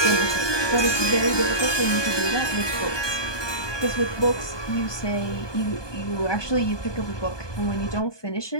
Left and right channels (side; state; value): right; late; 1.2 ms